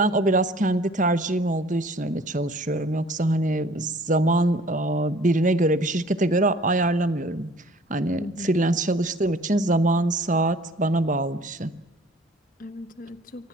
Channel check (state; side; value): normal; both; correlation 0.51